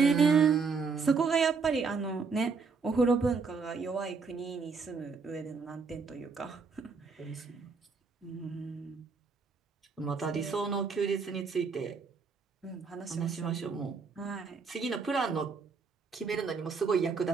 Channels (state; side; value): quieter; left; 5.0 dB